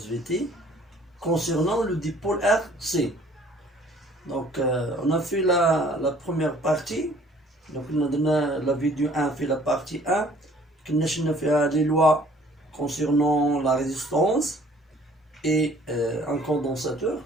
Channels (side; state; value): both; normal; correlation 0.55